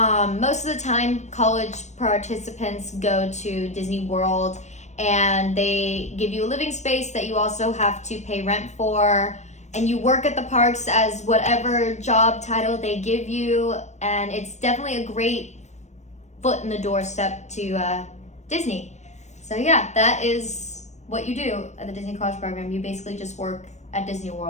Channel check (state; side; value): late; right; 0.34 ms